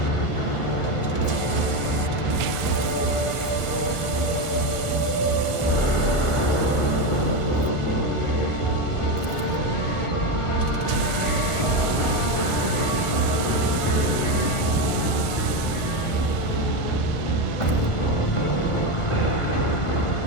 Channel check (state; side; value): late; right; 1.4 ms